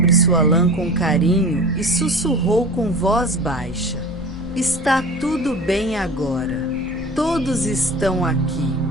sua lã com carinho e sussurrou com voz baixa: "Está tudo bem agora. Todos estão aqui."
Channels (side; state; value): left; noise; hum, 21 dB below the sound